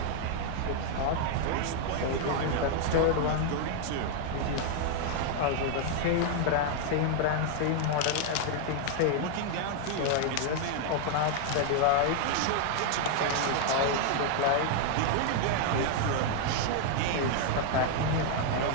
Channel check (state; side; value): different; both; correlation 0.00